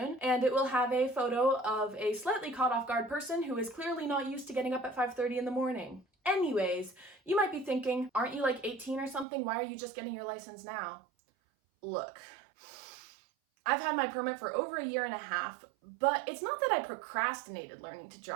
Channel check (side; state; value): left; drops out; at 9.2 s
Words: and it will have a photo of a slightly caught off guard person who is clearly not used to getting up at 5:30 in the morning. Anyways, you might be thinking, aren't you like 18 or something? Why are you just getting your license now? Look, I've had my permit for over a year and a half, but it's not that I procrastinated learning to